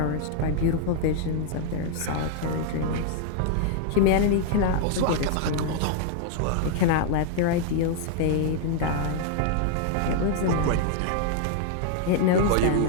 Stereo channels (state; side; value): different; both; correlation 0.00